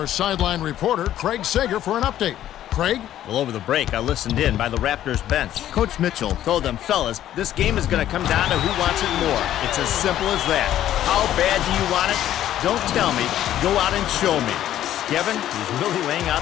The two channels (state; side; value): quieter; right; 12.1 dB